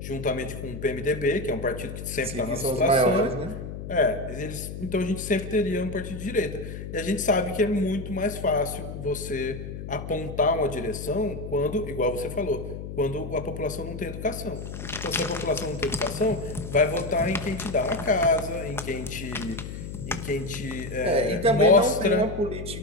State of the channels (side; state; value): left; noise; hum, 8 dB below the sound